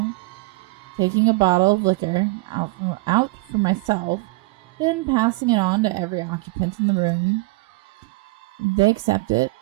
taking a bottle of liquor out for myself, then passing it on to every occupant in the room. They accept it,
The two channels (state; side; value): quieter; left; 24.2 dB